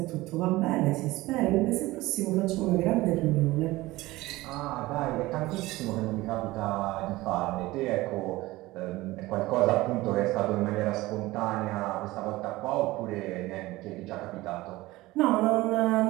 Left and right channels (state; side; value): quieter; left; 19.0 dB